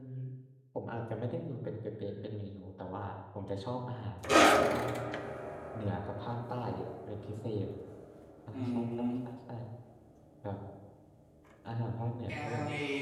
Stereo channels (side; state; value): both; identical; correlation 1.00